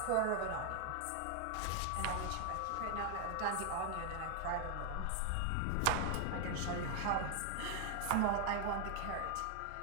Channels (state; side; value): different; both; correlation 0.00